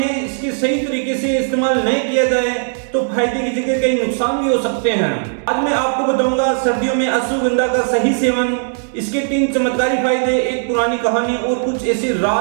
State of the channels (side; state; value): left; silent; digital silence